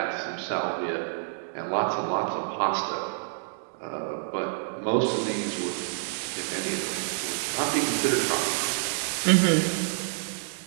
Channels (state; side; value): silent; left; digital silence